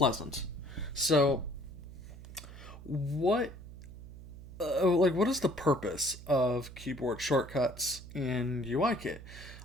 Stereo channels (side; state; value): right; noise; hum, 15 dB below the sound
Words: So, what is the purpose of keyboard shortcuts in UIKit?